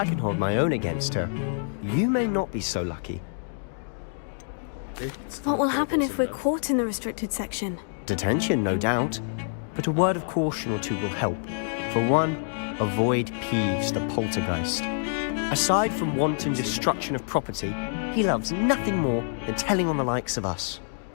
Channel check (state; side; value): silent; right; digital silence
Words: can hold my own against her. You may not be so lucky. What will happen if we're caught in the restricted section? Detention, no doubt, but a word of caution or two will help. For one, avoid Peeves the poltergeist. Aside from wanton destruction of property, he loves nothing more than telling on the likes of us.